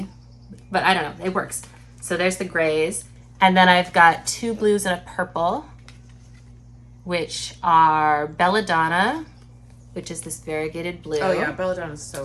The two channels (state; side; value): identical; both; correlation 1.00